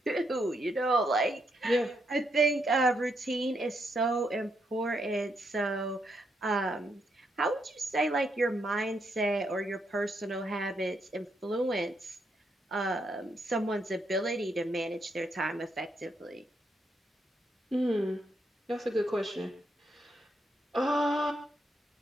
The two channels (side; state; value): both; normal; correlation 0.78